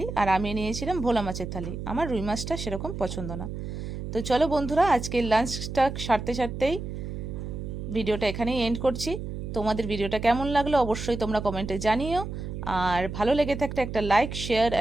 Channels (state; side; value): noise; right; hum, 7 dB below the sound